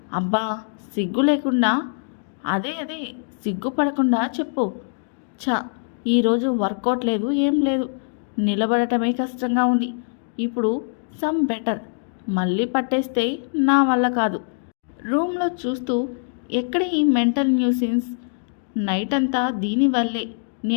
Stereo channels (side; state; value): right; silent; digital silence